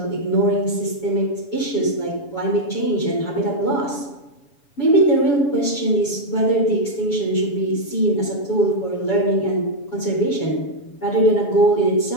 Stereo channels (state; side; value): late; right; 7.1 ms